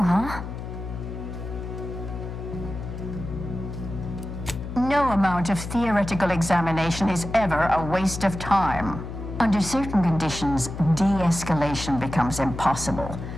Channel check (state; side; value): noise; left; hum, 8 dB below the sound